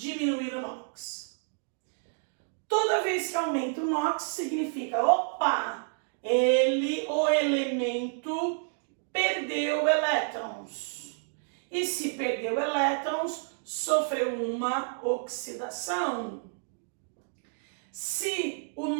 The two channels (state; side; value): silent; left; digital silence